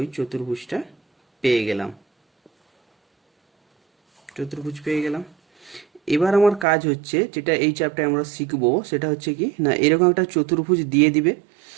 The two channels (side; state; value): left; drops out; at 6.7 s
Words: চতুর্ভুজটা পেয়ে গেলাম, চতুর্ভুজ পেয়ে গেলাম। এবার আমার কাজ হচ্ছে, যেটা এই চ্যাপ্টারে আমরা শিখবো সেটা হচ্ছে কি না, এরকম একটা চতুর্ভুজ দিয়ে দিবে